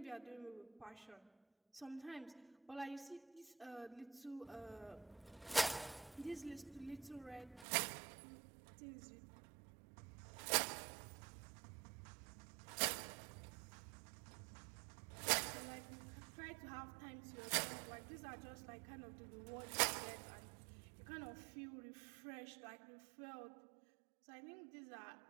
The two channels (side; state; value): left; drops out; at 7.7 s